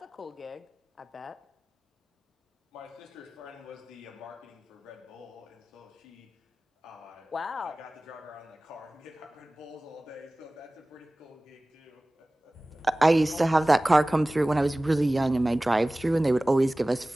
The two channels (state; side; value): normal; both; correlation 0.98